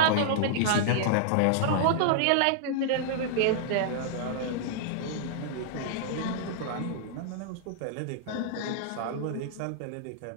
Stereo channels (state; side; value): different; both; correlation -0.01